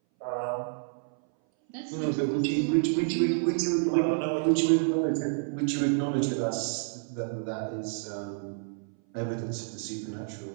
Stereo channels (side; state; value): left; silent; 58 dB below the other